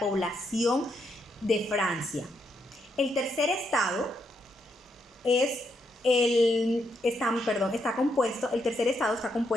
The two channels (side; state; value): both; normal; correlation 0.79